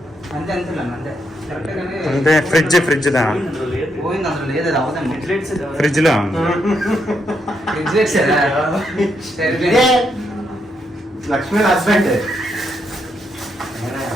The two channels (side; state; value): both; normal; correlation 0.79